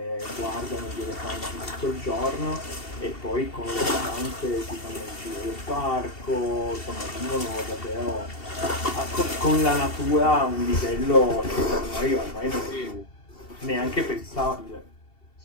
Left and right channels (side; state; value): right; late; 2.7 ms